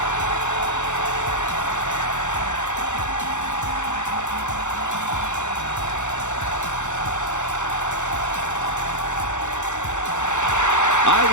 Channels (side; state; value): right; late; 0.84 ms